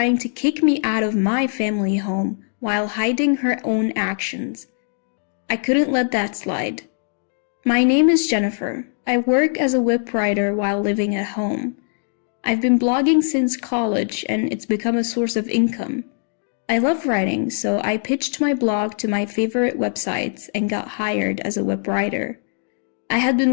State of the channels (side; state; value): right; silent; digital silence